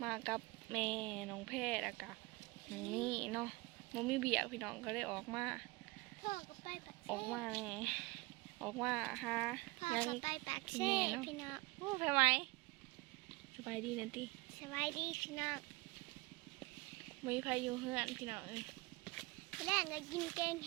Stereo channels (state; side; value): quieter; left; 23.6 dB